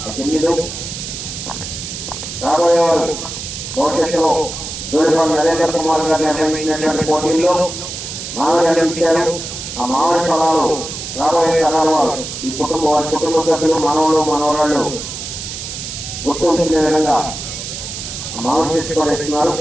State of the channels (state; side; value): noise; right; hiss, 8 dB below the sound